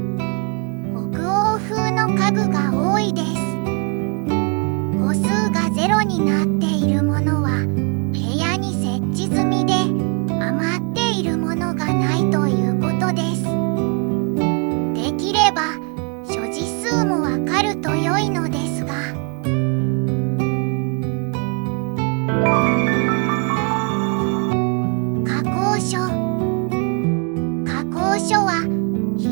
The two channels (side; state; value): left; quieter; 36.5 dB